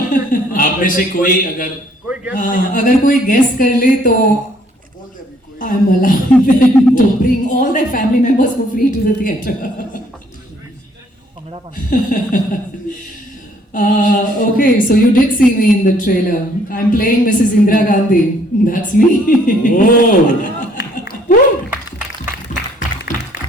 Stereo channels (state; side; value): normal; both; correlation 0.63